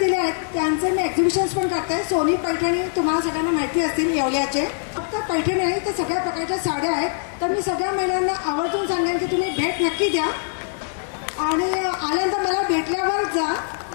आहेत त्यांचे मी एक्झिबिशन्स पण करते. सोनी पैठणी तुम्हाला सगळ्यांना माहिती असतील येवल्याचे. फक्त पैठणी नाही तर सगळ्या प्रकारच्या साड्या आहेत. तर मी सगळ्या महिलांना आवर्जून सांगेन की तुम्ही भेट नक्की द्या आणि आल्यानंतर मला भेटल्यावर जा,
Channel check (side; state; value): right; silent; digital silence